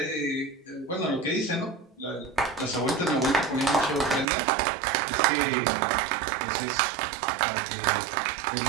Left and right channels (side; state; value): left; drops out; at 4.2 s